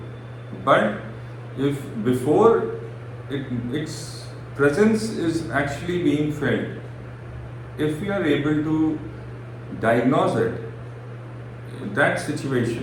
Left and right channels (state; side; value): identical; both; correlation 1.00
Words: But if before its presence is actually being felt, if we are able to diagnose it, that